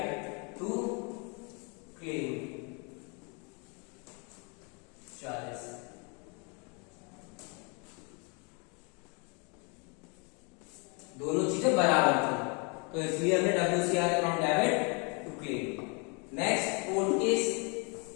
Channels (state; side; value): quieter; right; 33.9 dB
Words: टू क्लेम 40। दोनों चीजें बराबर थी, तो इसलिए हमने WCR account debit to claim. Next 4th case,